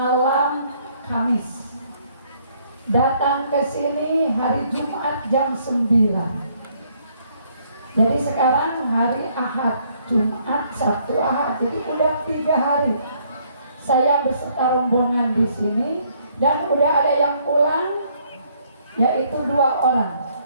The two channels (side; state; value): both; inverted; correlation -0.67